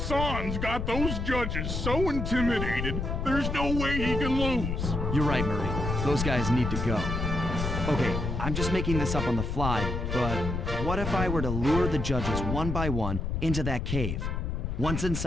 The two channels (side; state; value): left; noise; rumble, 2 dB below the sound